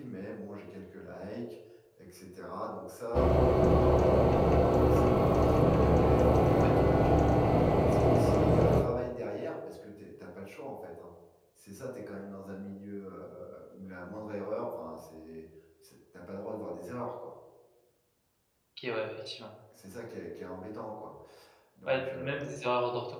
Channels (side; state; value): both; identical; correlation 1.00